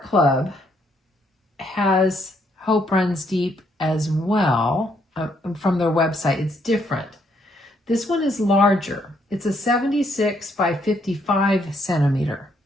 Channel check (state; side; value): normal; both; correlation 0.72